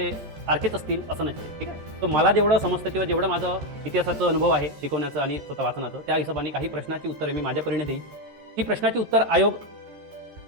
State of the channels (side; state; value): left; late; 14 ms